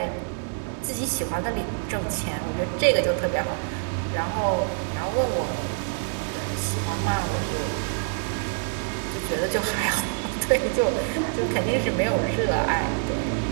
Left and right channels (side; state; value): left; silent; digital silence